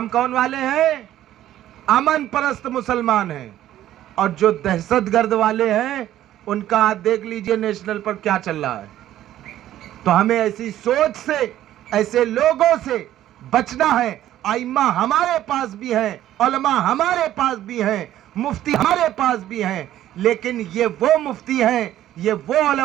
کون والے ہیں؟ امن پرست مسلمان ہیں، اور جو دہشت گرد والے ہیں ان کا آپ دیکھ لیجئے نیشنل پر کیا چل رہا ہے۔ تو ہمیں ایسی سوچ سے، ایسے لوگوں سے بچنا ہے۔ ائمہ ہمارے پاس بھی ہیں، علماء ہمارے پاس بھی ہیں، مفتی ہمارے پاس بھی ہیں، لیکن یہ وہ مفتی ہیں، یہ وہ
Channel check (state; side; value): quieter; left; 12.8 dB